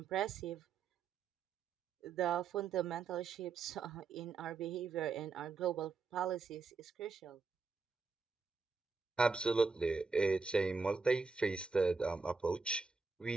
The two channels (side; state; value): left; quieter; 4.6 dB